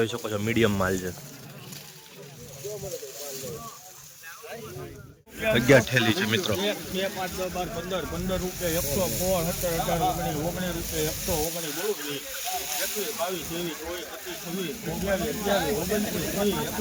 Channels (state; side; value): identical; both; correlation 1.00